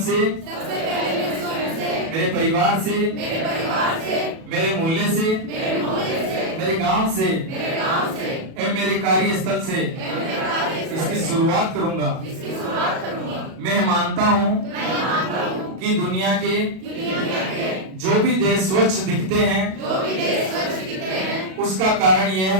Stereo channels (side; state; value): left; late; 37 ms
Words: मेरे परिवार से, मेरे मोहल्ले से, मेरे गांव से एवं मेरे कार्यस्थल से इसकी शुरुआत करूंगा। मैं मानता हूं कि दुनिया के जो भी देश स्वच्छ दिखते हैं उसका कारण यह